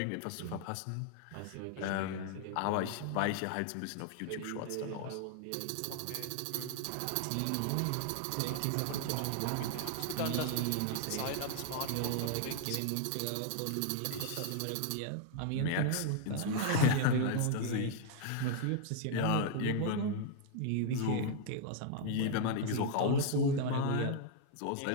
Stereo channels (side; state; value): both; different; correlation 0.00